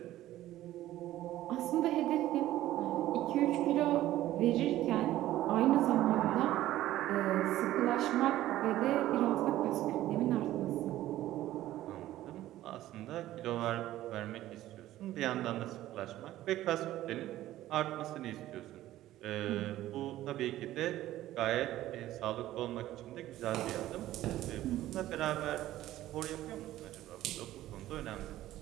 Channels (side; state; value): left; quieter; 14.5 dB